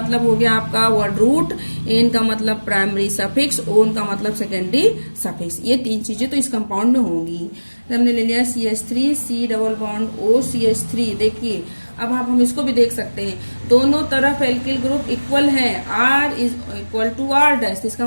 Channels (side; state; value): both; inverted; correlation -1.00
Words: हो गया आपका वर्ड रूट, एन का मतलब प्राइमरी सफिक्स, ओन का मतलब सेकेंडरी सफिक्स। ये 3 चीजें तो इस कंपाउंड में होंगी। हमने ले लिया CH3, C double bond O CH3। देखिए अब हम इसको भी देख सकते हैं, दोनों तरफ एल्किल ग्रुप इक्वल है, R is equal to R dash. इसका